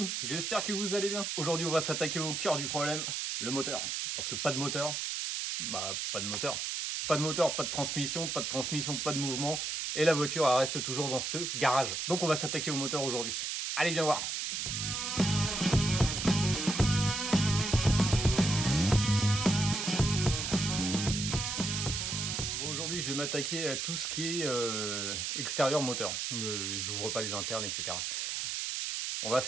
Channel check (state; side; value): noise; right; hiss, 2 dB below the sound